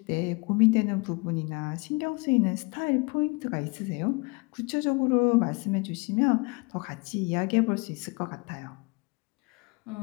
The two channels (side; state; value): right; quieter; 29.1 dB